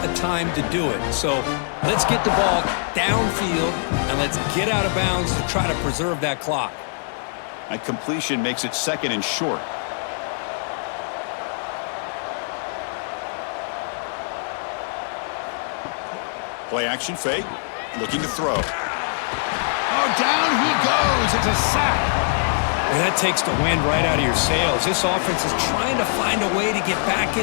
of time to do it. So let's get the ball downfield, and let's get out of bounds to try to preserve that clock. A completion makes it 2nd and short. Play action fake. Looking to throw. Oh, down he goes. It's a sack. Well, that takes the wind right out of your sails. This offense is trying to find a way to get back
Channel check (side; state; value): right; silent; 56 dB below the other